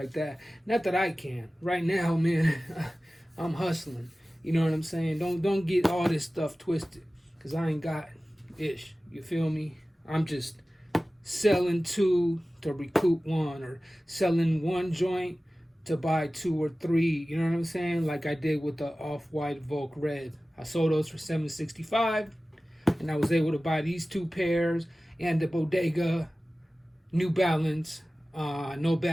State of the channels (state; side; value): normal; both; correlation 0.97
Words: that. Not that I can. Right now, man, I'm hustling. You know what I'm saying? Don't get all this stuff twisted, because I ain't got ish. You feel me? I'm just selling 2 to recoup 1, or selling 1 joint to buy 2 or 3, you know what I'm saying? Like I did with the off-white Volk Red. I sold those for $765, and I was able to buy these 2 pairs and the Bodega New Balance No